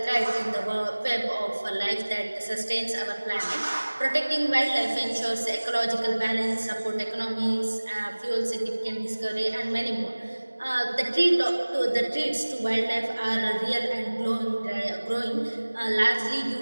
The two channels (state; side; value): inverted; both; correlation -1.00